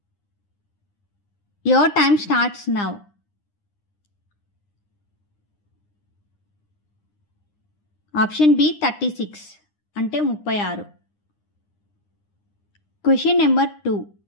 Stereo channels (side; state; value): right; late; 9.8 ms